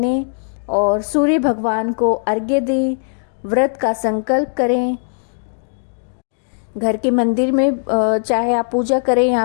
और सूर्य भगवान को अर्घ्य दें, व्रत का संकल्प करें। घर के मंदिर में चाहे आप पूजा करें या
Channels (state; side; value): silent; right; digital silence